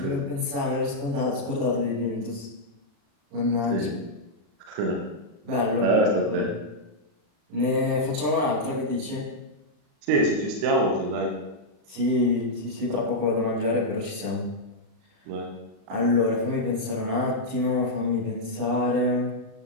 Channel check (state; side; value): late; left; 35 ms